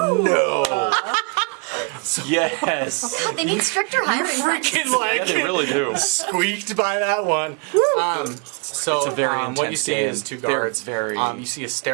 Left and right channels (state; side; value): quieter; left; 34.7 dB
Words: Yes. They need stricter hiring Freaking Yeah, they really do. squeaked by that one. So It's a very what you intense see game. is 2 They're guards. very- You see a